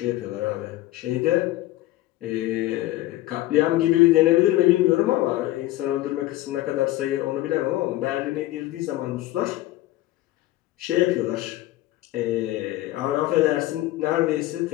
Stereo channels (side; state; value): right; quieter; 16.3 dB